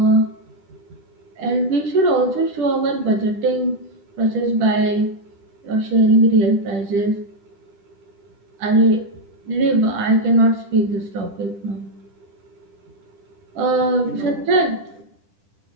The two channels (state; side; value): late; left; 10 ms